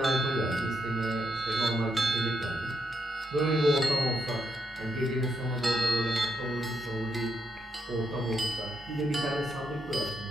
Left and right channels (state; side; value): normal; both; correlation 0.79